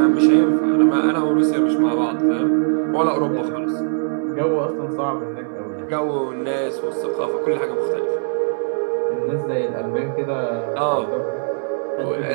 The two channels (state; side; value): silent; left; digital silence